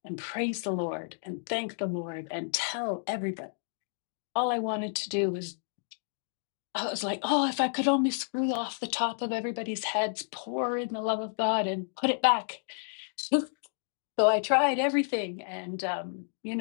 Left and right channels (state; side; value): silent; right; digital silence